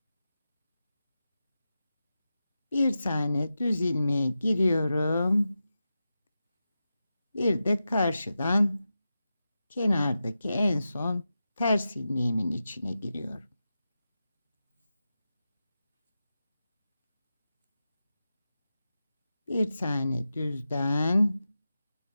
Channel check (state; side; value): inverted; both; correlation -0.91